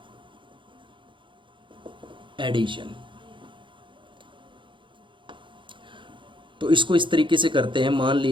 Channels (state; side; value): late; left; 0.24 ms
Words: addition. तो इसको इस तरीके से करते हैं, मान